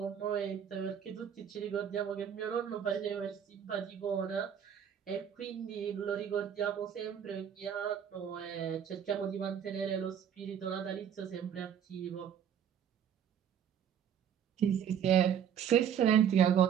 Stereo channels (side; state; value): left; quieter; 8.7 dB